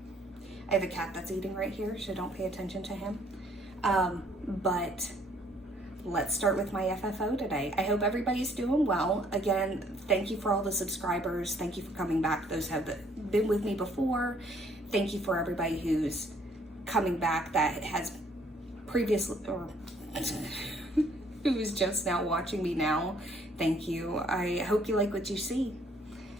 I have a cat that's eating right here, so don't pay attention to him. But let's start with my FFO today. I hope everybody's doing well. Again, thank you for all the subscribers. Thank you for coming back. Those have been with me before. Thank you for everybody who's coming back that has previously, or who's just now watching me now. Thank you. I hope you like what you see.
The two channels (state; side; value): normal; both; correlation 0.63